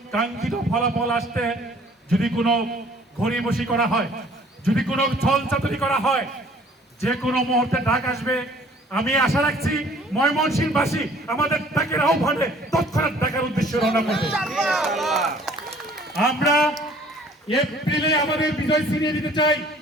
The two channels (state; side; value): normal; both; correlation 0.55